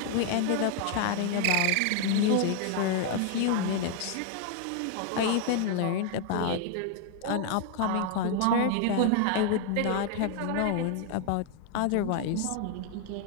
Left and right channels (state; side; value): different; both; correlation 0.00